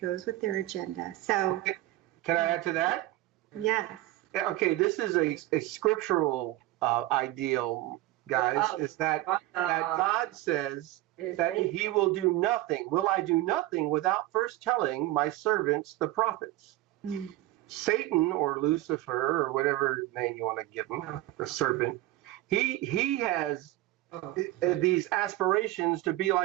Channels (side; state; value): left; quieter; 16.4 dB